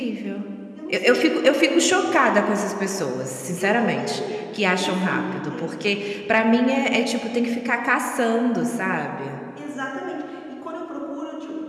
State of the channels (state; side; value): identical; both; correlation 1.00